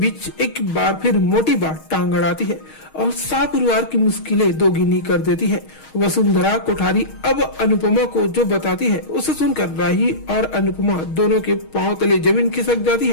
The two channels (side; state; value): right; late; 6.4 ms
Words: एक बार फिर मोटी बात टांग अड़ाती है और सारे परिवार की मुश्किलें दोगुनी कर देती है। वसुंधरा कोठारी अब अनुपमा को जो बताती है उसे सुनकर राही और अनुपमा दोनों के पांव तले जमीन खिसक जाती